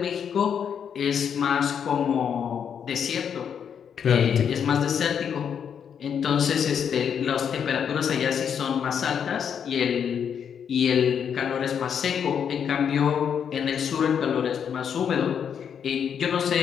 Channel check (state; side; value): quieter; right; 7.8 dB